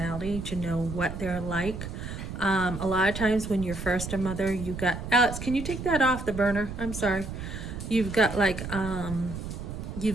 to know what they're like. A lot of times when you're first a mother, Alex, can you take that off the burner? I'm sorry. You've got like a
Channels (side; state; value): right; noise; rumble, 7 dB below the sound